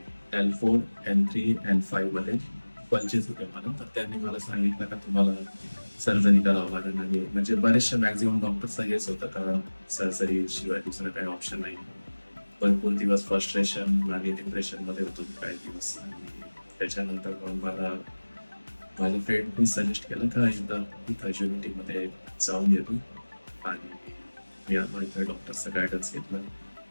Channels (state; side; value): inverted; both; correlation -1.00